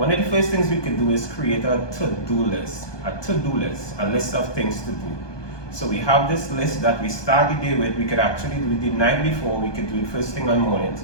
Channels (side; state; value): right; late; 1.2 ms